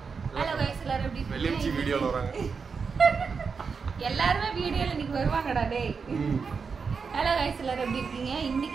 ஹலோ கைஸ், எல்லாரும் எப்படி இருக்கீங்க? வெள்ளியம்ச்சி வீடியோவில் வராங்க. எல்லாருமே வீடியோல இன்னைக்கு வருவாங்கடா டேய். ஹலோ கைஸ், எல்லாரும் எப்படி இருக்கீங்க?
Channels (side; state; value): left; quieter; 5.4 dB